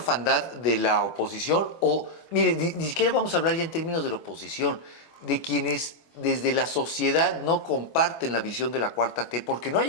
de la oposición, o, mire, ni siquiera vamos a hablar ya en términos de la oposición, de quienes desde la sociedad no comparten la visión de la Cuarta T, porque no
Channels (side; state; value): right; late; 24 ms